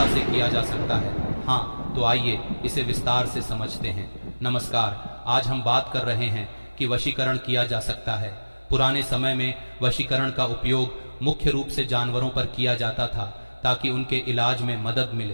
से किया जा सकता है? हाँ, तो आइए इसे विस्तार से समझते हैं। नमस्कार, आज हम बात कर रहे हैं कि वशीकरण किया जा सकता है। पुराने समय में वशीकरण का उपयोग मुख्य रूप से जानवरों पर किया जाता था ताकि उनके इलाज में मदद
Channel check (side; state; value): both; inverted; correlation -1.00